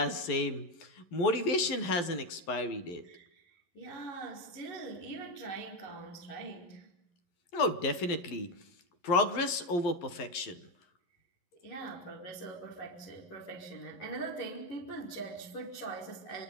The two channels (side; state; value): right; late; 11 ms